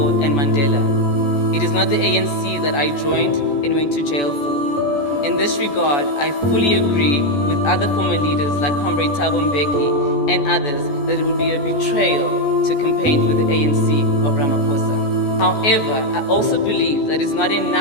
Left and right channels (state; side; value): late; right; 14 ms